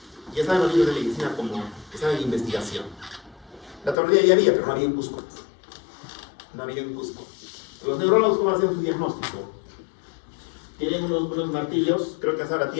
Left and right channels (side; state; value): right; drops out; at 4.0 s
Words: Ya estaban los libros de medicina como que estaban en investigación. La tomografía ya había, pero no había en Cusco. No había en Cusco. Los neurólogos, ¿cómo hacen su diagnóstico? Tienen unos martillos, creo que hasta ahora